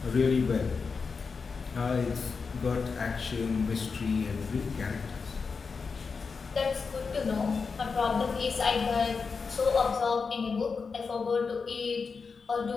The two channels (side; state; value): right; quieter; 5.0 dB